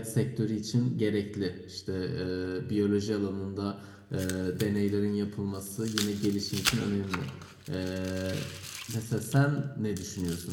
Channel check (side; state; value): both; identical; correlation 1.00